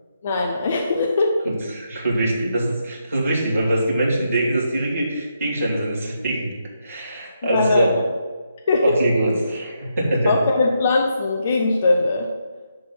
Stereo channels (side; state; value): both; inverted; correlation -0.80